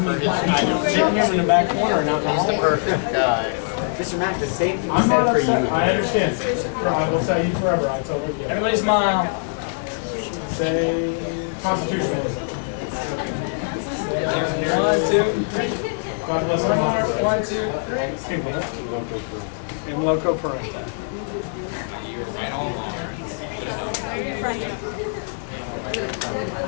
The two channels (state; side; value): silent; right; 58 dB below the other